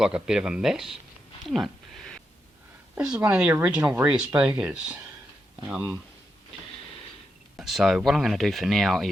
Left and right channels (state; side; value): normal; both; correlation 0.85